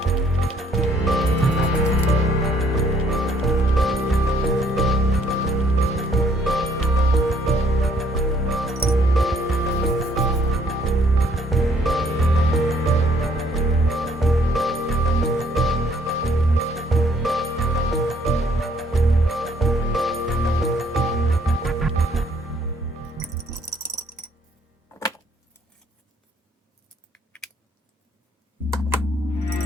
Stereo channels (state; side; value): normal; both; correlation 0.64